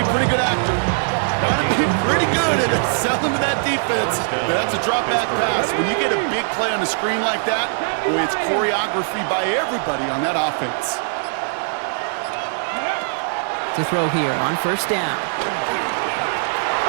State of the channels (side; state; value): left; silent; digital silence